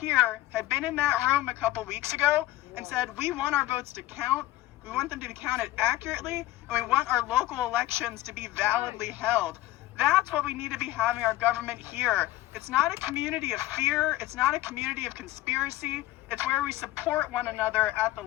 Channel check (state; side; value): quieter; right; 16.1 dB